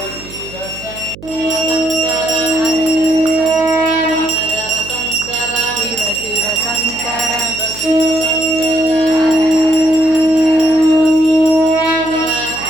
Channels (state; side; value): noise; right; hum, 17 dB below the sound